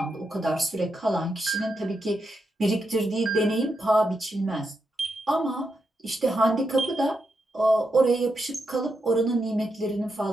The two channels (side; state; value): both; normal; correlation 0.84